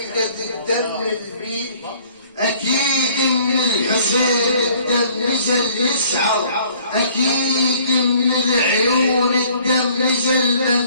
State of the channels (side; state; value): both; inverted; correlation -0.57